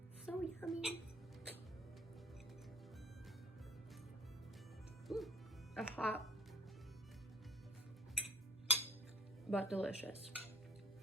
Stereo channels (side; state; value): both; normal; correlation 0.48